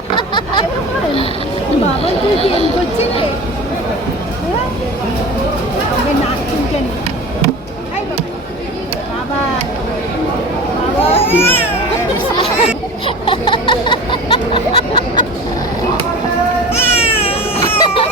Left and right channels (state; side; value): normal; both; correlation 0.35